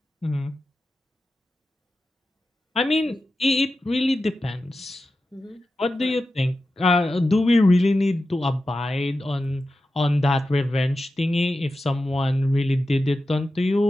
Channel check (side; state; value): both; normal; correlation 0.92